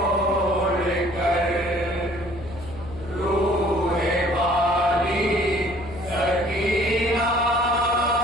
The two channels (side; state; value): left; noise; hum, 15 dB below the sound